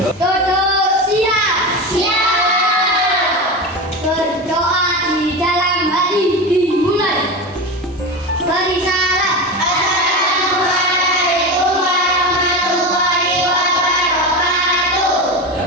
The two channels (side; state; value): both; normal; correlation 0.23